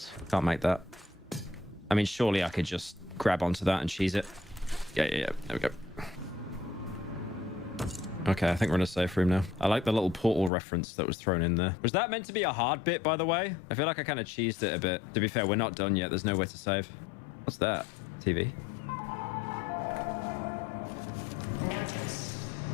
Can't make that. I mean, surely I could just grab onto that and cheese it. Yeah. There we go. Okay, I think we're in a safe room now. I like the little portal reference that was thrown in there. Was that meant to be a hard bit, by the way? I feel like I kind of cheesed it a bit. To be fair, we're not done yet. There's nowhere to save. What's that? TV? Notice.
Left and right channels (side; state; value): right; drops out; at 10.5 s